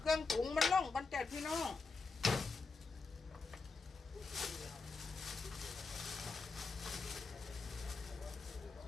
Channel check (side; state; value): right; quieter; 4.2 dB